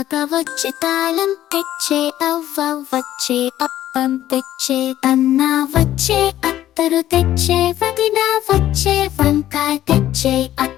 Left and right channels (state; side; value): quieter; right; 12.9 dB